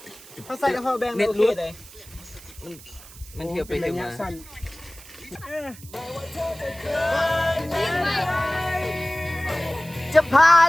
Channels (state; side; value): noise; right; hiss, 19 dB below the sound